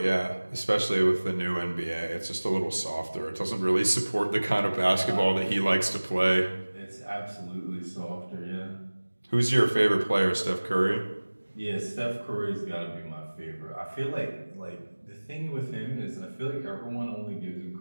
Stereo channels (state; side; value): inverted; both; correlation -1.00